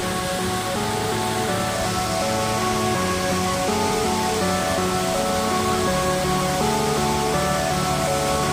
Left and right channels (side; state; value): left; noise; hum, 23 dB below the sound